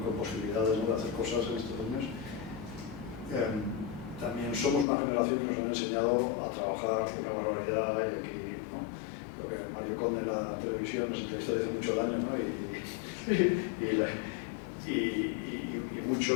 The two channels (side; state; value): right; drops out; at 4.9 s